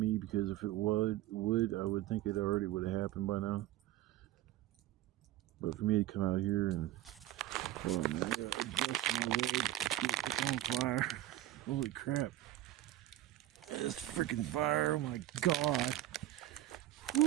because if it would, I would think it already would have happened by now. But for me to come out here and, hold on, man, I gotta adjust my legs to get this on fire. Holy crap. This freaking fire, oh my god.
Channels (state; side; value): quieter; left; 14.6 dB